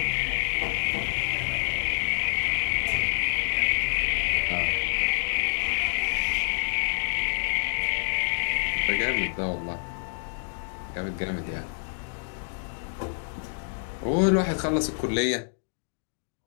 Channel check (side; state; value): right; silent; digital silence